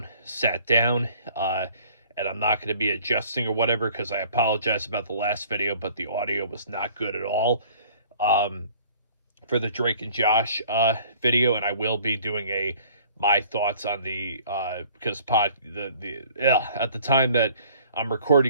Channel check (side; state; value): both; inverted; correlation -0.54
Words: sat down, and I'm not going to be adjusting or whatever because I apologize about the last video, but the audio was not good at all um, for the Drake and Josh video, and I will be doing my thoughts on the because at the time that I'm